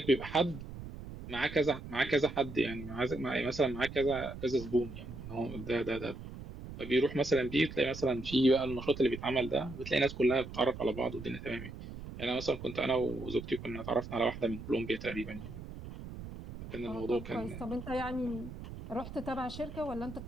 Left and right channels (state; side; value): noise; right; rumble, 11 dB below the sound